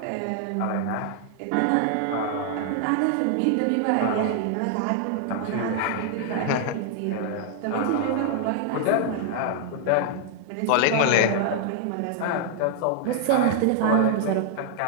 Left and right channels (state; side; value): different; both; correlation 0.00